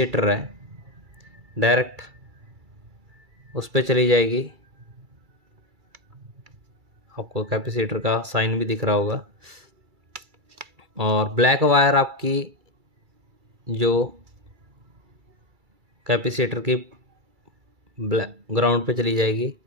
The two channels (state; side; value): late; left; 2.3 ms